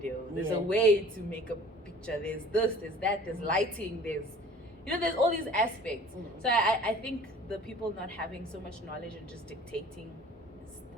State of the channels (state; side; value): normal; both; correlation 0.48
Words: There's a way to make a picture. There's this, there's that, there's lighting, there's all these aspects. So I think the people not having so much knowledge and just dictating is